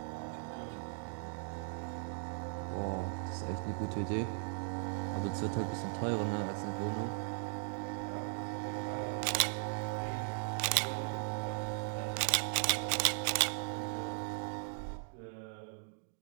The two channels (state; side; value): silent; left; digital silence